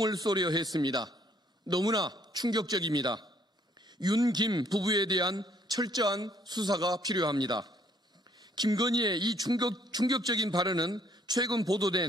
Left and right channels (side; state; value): both; normal; correlation 0.64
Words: 쏘려 했습니다. 너무나 충격적입니다. 윤, 김 부부에 대한 철저한 수사가 필요합니다. 김건희의 이 충격적인 발언은 최근